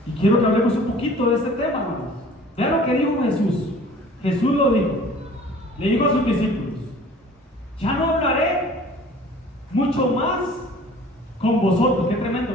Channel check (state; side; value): normal; both; correlation 0.48